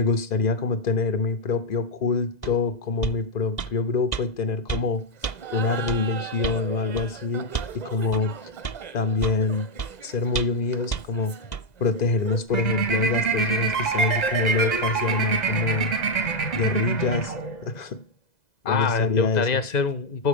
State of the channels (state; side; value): late; right; 2.0 ms